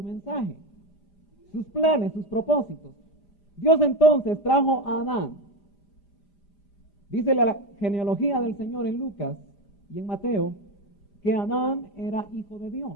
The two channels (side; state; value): right; late; 5.0 ms